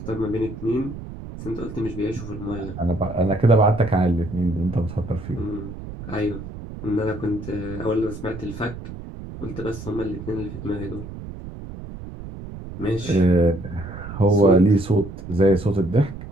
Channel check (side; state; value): right; noise; rumble, 11 dB below the sound